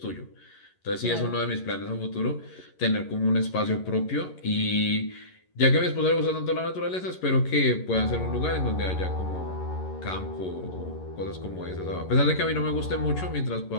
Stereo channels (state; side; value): late; right; 11 ms